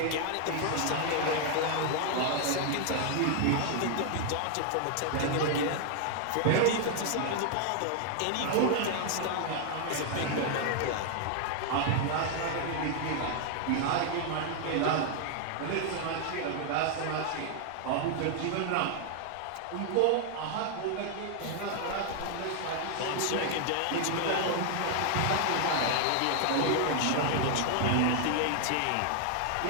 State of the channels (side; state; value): both; different; correlation 0.00